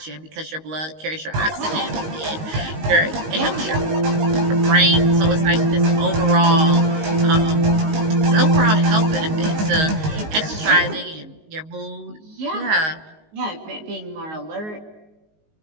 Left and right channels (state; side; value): late; left; 19 ms